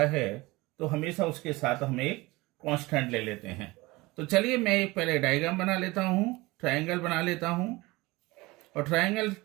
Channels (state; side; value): quieter; left; 21.8 dB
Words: है तो हमेशा उसके साथ हम एक कांस्टेंट ले लेते हैं। तो चलिए मैं एक पहले डायग्राम बना लेता हूं, ट्रायंगल बना लेता हूं और ट्रायंगल